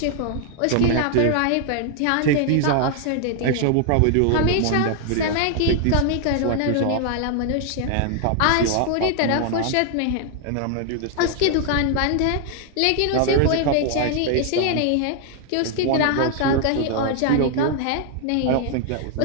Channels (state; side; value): different; both; correlation 0.00